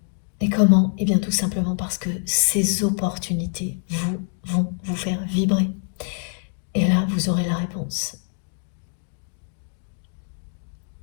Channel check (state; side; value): silent; right; 56 dB below the other